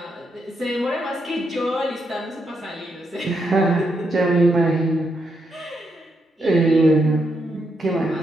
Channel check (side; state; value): both; normal; correlation 0.80